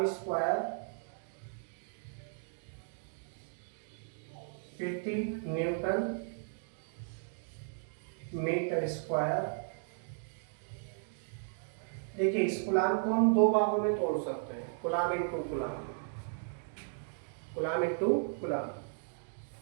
स्क्वायर प्रति न्यूटन मीटर स्क्वायर। देखिए, इस कूलम्ब को हम दो भागों में तोड़ सकते हैं, coulomb into coulomb, coulomb into coulomb.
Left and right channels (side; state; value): left; silent; digital silence